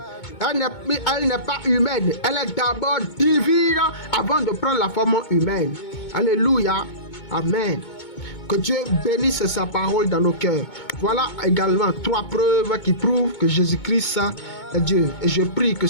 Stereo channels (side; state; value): right; late; 2.2 ms